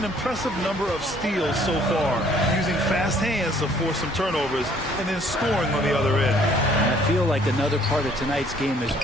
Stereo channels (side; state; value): both; normal; correlation 0.60